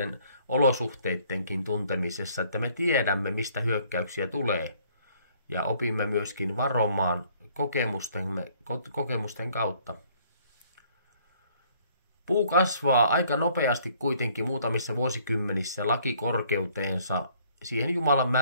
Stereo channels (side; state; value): both; inverted; correlation -0.61